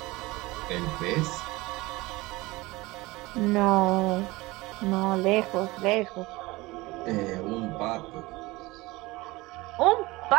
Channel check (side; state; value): left; quieter; 21.3 dB